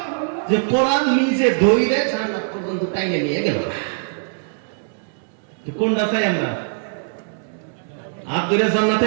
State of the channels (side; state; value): left; silent; digital silence